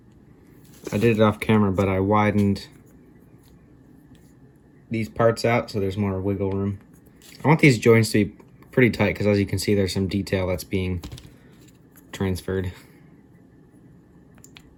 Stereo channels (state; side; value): identical; both; correlation 1.00